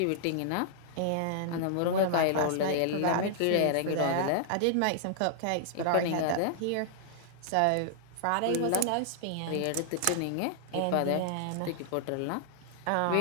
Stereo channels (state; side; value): different; both; correlation -0.01